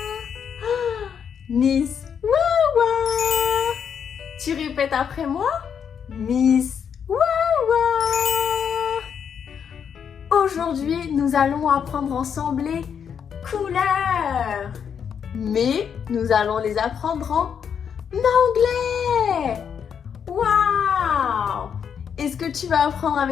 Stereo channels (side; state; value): right; quieter; 7.5 dB